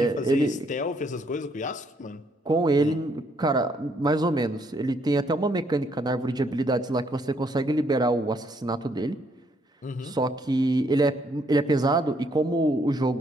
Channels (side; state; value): both; normal; correlation 0.70